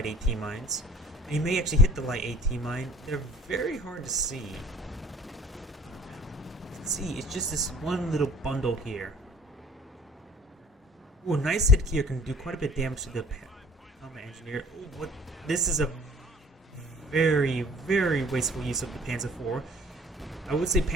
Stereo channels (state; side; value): normal; both; correlation 0.50